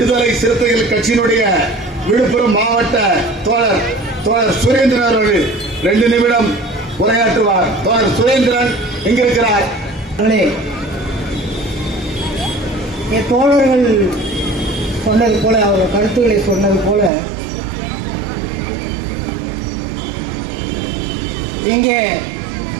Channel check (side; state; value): left; drops out; at 17.1 s